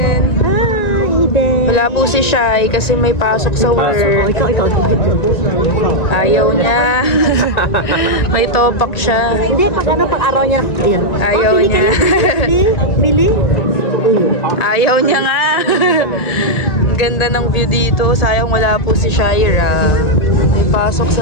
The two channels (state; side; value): late; right; 1.9 ms